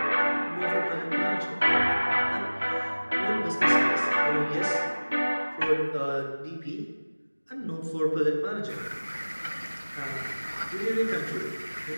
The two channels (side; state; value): both; inverted; correlation -1.00